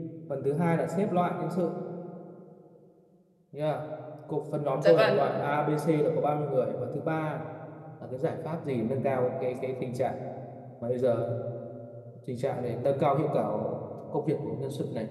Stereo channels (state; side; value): identical; both; correlation 1.00